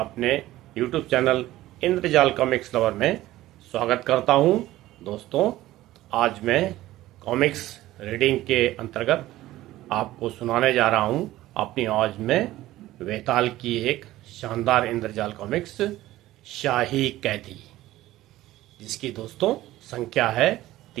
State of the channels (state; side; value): quieter; left; 15.9 dB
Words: YouTube चैनल इंद्रजाल कॉमिक्स लवर में स्वागत करता हूं। दोस्तों, आज मैं कॉमिक्स रीडिंग के अंतर्गत आपको सुनाने जा रहा हूं अपनी आवाज में वेताल की एक शानदार इंद्रजाल कॉमिक्स शाही कैदी, जिसकी दोस्तों संख्या है